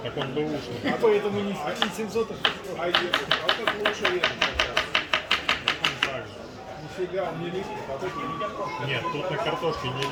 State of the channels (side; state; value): both; identical; correlation 1.00